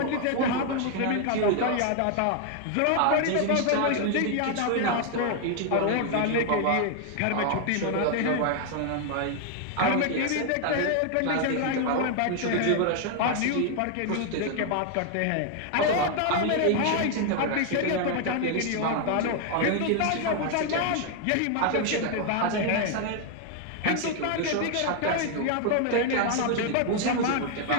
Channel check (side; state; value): both; different; correlation 0.00